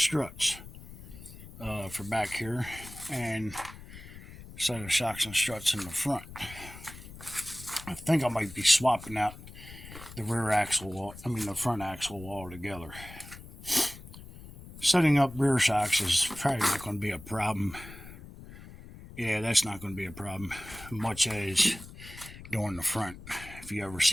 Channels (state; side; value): noise; left; rumble, 16 dB below the sound